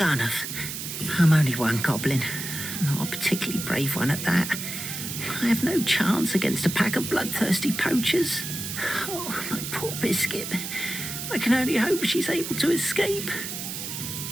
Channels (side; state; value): right; noise; hiss, 6 dB below the sound